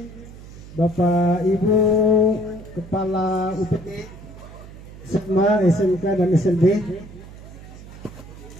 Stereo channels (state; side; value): noise; right; hum, 16 dB below the sound